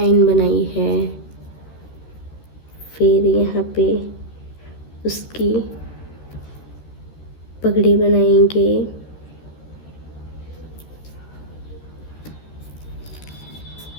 बनाई है, फिर यहाँ पे उसकी पगड़ी बनाएंगे।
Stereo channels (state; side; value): late; right; 13 ms